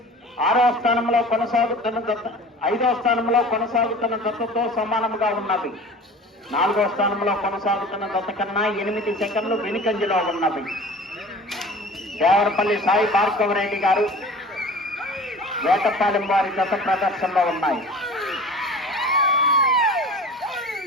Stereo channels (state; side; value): normal; both; correlation 0.41